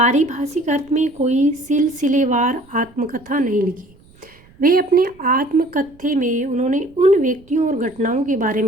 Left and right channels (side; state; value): right; noise; rumble, 28 dB below the sound